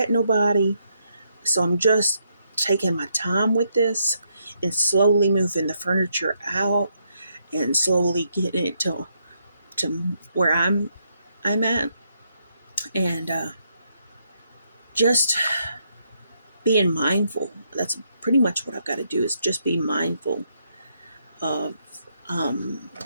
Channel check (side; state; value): both; inverted; correlation -0.77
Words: nobody. So I'm just taking my time with this and slowly moving the furniture out and slowly getting it to where I'm at, and just being mindful. That's pretty much what I've got to do, is just be mindful of